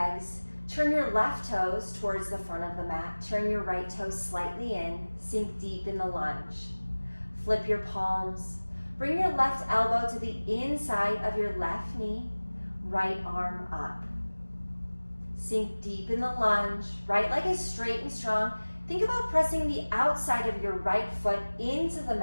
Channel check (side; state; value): both; inverted; correlation -1.00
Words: Turn your left toes towards the front of the mat. Turn your right toes slightly in. Sink deep in the lunge. Flip your palms. Bring your left elbow to the inside of your left knee. Right arm up. Sink deep in the lunge. Right leg is straight and strong. Think about pressing the outside of your right foot into the